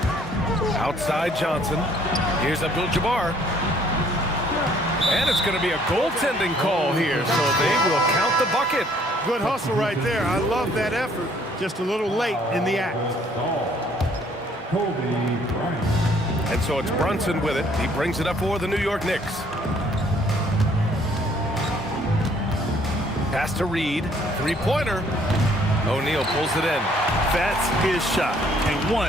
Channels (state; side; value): normal; both; correlation 0.62